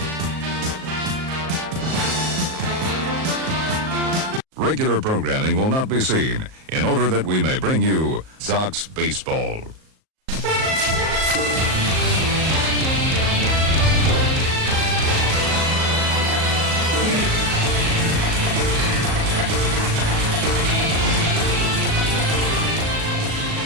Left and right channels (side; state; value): left; late; 38 ms